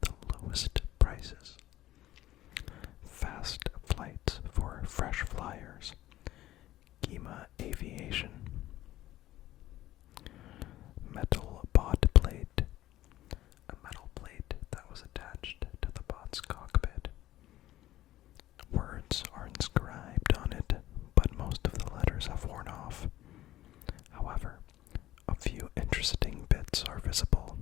lowest prices. Fast flights for fresh flyers. Gima Aviation. Metal bod plate. A metal plate that was attached to the bot's cockpit. Words are inscribed on it, but most of the letters have worn off. However, a few interesting bits are visible,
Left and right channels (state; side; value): quieter; right; 14.8 dB